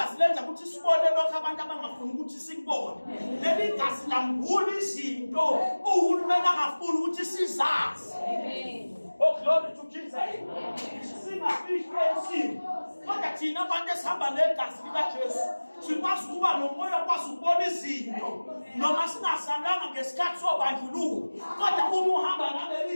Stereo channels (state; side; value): inverted; both; correlation -1.00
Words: lenza ukuthi sibone lokho abantu abangafuni ukuthi sikubone. Leli gazi lambula izinto uhulumeni angafuni ukuthi sizazi. Amen. Oh glory to Jesus. Singafihli esimo. Kodwa thina abantu esihamba negazi likaJesu sikwazi ukuba nomoya okwazi ukubona izinto noma singasanganga ngesikhathi sobandlululo. Kodwa uma uhamba